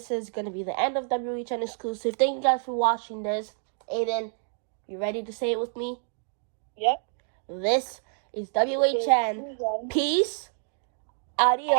is gonna be the end of WHN Exclusive. Thank you guys for watching this. Aiden, you ready to say it with me? Yep. This is WHN. Peace.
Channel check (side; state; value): left; silent; digital silence